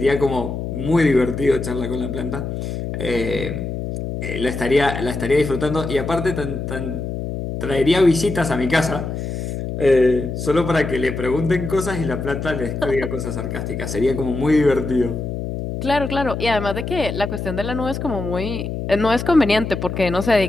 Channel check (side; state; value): left; noise; hum, 5 dB below the sound